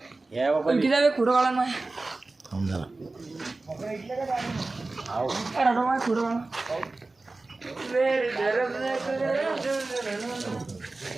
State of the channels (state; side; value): quieter; left; 3.3 dB